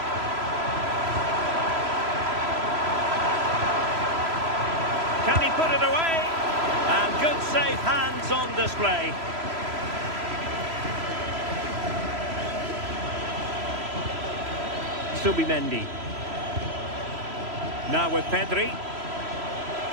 Can he put it away? And good safe hands on display. Subimendi. Now with Pedri.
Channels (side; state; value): left; late; 3.0 ms